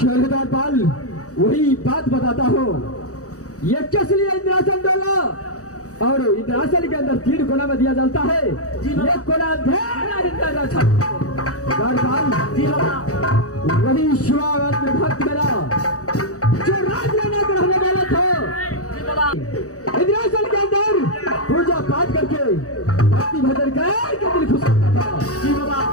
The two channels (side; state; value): right; late; 0.66 ms